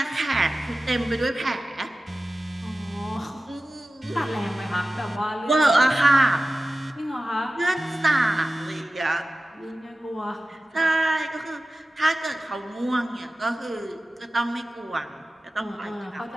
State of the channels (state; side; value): normal; both; correlation 0.95